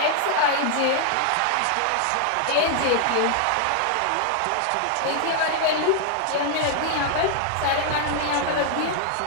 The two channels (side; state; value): both; different; correlation 0.00